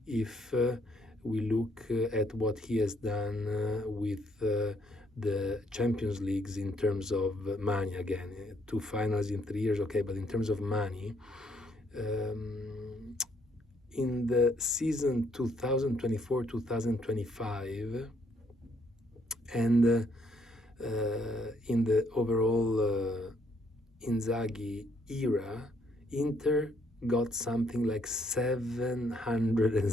if we look at what he has done with the Champions Leagues in terms of money. Again, 2 finals in 3 years, okay, but in terms of money, in the season 2024-2025 and in the overall Inzaghi era, Inter got something like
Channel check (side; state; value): both; normal; correlation 0.70